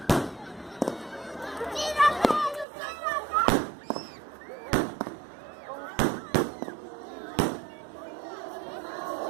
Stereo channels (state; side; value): drops out; left; at 2.7 s